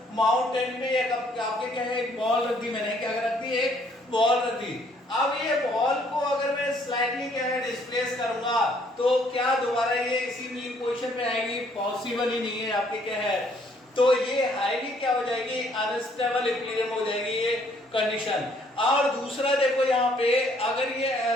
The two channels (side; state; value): both; normal; correlation 0.65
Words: माउंटेन पे एक आपके क्या है एक बॉल रख दी, मैंने क्या रख दी, एक बॉल रख दी। अब ये बॉल को अगर मैं स्लाइडली क्या है डिस्प्लेस करूंगा तो क्या दोबारा ये इसी मीन पोजीशन पे आएगी? पॉसिबल ही नहीं है आपके क्या है। तो ये हाईली क्या हो जाएगी, अनस्टेबल इक्विलिब्रियम हो जाएगी ये कंडीशन। और दूसरा देखो यहाँ पे अगर ये